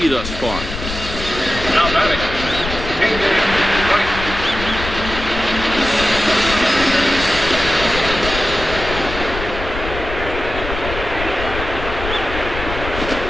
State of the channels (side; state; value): left; noise; rumble, 8 dB below the sound